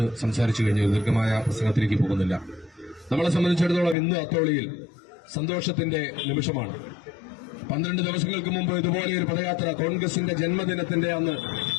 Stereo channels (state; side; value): drops out; right; at 4.0 s